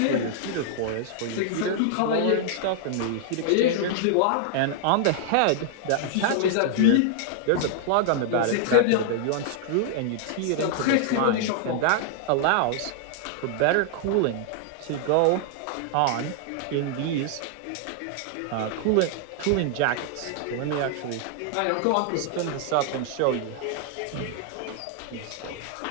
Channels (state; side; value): different; both; correlation -0.01